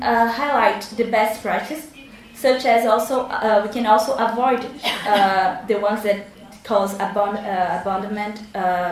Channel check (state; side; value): identical; both; correlation 1.00